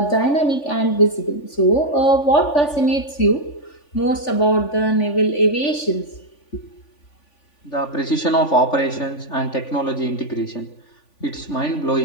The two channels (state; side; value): late; right; 3.5 ms